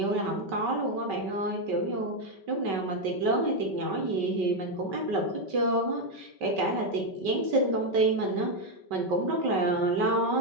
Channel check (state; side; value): late; left; 5.2 ms